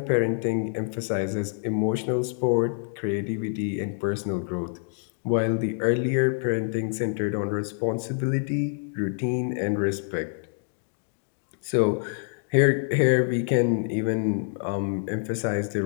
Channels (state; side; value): silent; right; digital silence